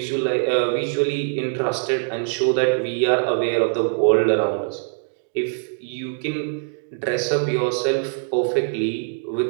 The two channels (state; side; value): silent; left; digital silence